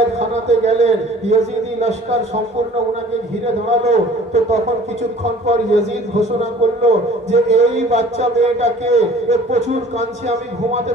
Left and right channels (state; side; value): normal; both; correlation 0.49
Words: গেলেন, ইয়াজিদি লস্কর সম্পূর্ণ উনাকে ঘিরে দাঁড়ালো। তো তখন কিছুক্ষণ পর ইয়াজিদ ঘোষণা করলো যে এই বাচ্চা মেয়েটাকে প্রচুর কাঁদছে, আমি ঘুমাতে